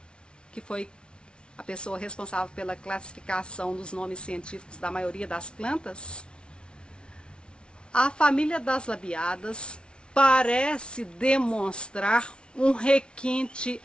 que foi a pessoa responsável pela classificação dos nomes científicos da maioria das plantas, a família das labiadas parece demonstrar um requinte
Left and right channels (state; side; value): late; right; 0.057 ms